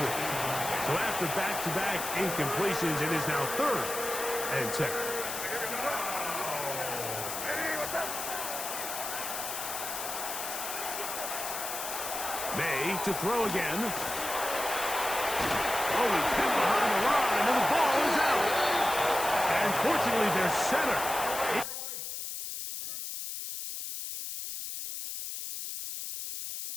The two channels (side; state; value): left; noise; hiss, 5 dB below the sound